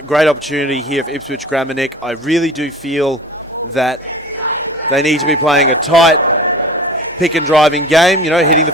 great opportunity here for Ipswich Grammar, Nick. I really do feel that they need to be playing a tight pick and driving game, hitting the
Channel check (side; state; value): both; normal; correlation 0.40